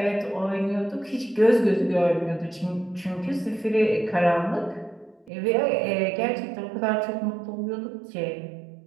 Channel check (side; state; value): left; drops out; at 5.3 s